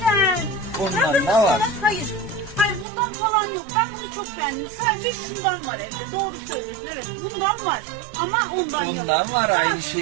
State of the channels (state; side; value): drops out; left; at 2.9 s